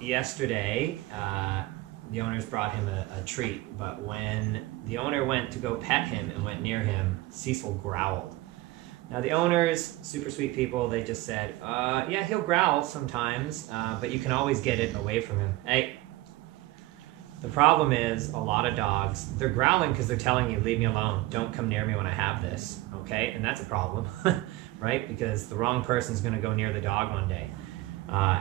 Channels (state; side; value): quieter; left; 18.7 dB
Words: yesterday, the owners brought him a treat, but when the owner went to go pet him and went near him, Cecil growled. Now the owners, super sweet people, they just said, yeah, he'll growl sometimes, but you can always get it away from him. Hey, the problem is a lot of dogs, they're growling because they're telling you, leave me alone, don't come near me when I have this, okay? And that's a problem, right? Because the wrong person's gonna go near the dog one day,